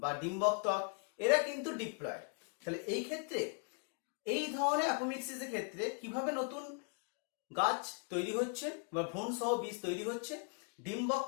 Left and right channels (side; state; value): right; quieter; 38.1 dB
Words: বা ডিম্বক ত্বক, এরা কিন্তু ডিপ্লয়েড। তাহলে এই ক্ষেত্রে এই ধরনের অ্যাপোমিক্সিসের ক্ষেত্রে কিভাবে নতুন গাছ তৈরি হচ্ছে বা ভ্রূণ সহ বীজ তৈরি হচ্ছে, ডিম্বক